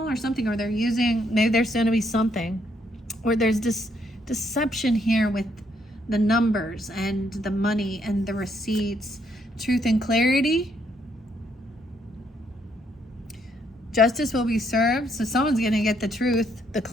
or something, or they're using, maybe there's going to be something, or there's this deception here with the numbers and the money and the receipts. Truth and clarity. Justice will be served. So someone's going to get the truth, the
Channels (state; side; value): normal; both; correlation 0.72